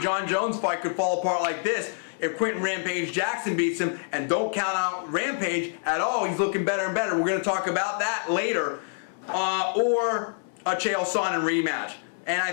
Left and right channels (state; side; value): silent; right; 56 dB below the other